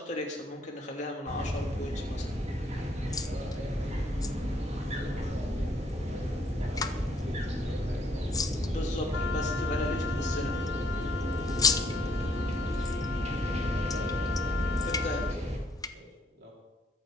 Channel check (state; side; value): normal; both; correlation 0.67